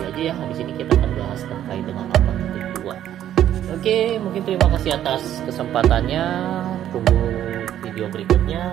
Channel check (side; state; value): left; quieter; 11.2 dB